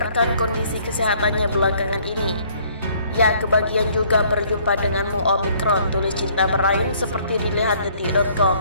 kondisi kesehatannya belakangan ini. Ya, kebahagiaan juga berjumpa denganmu Omicron, tulis Cinta Brain seperti dilihat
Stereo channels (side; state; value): both; inverted; correlation -0.60